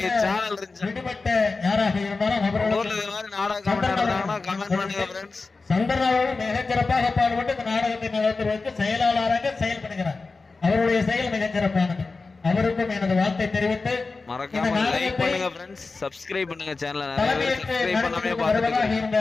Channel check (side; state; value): right; quieter; 3.9 dB